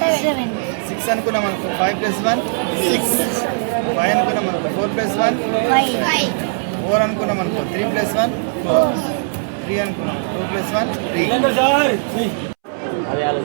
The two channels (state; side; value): silent; left; 67 dB below the other